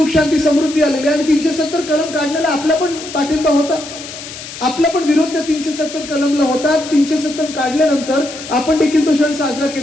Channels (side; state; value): left; noise; hiss, 12 dB below the sound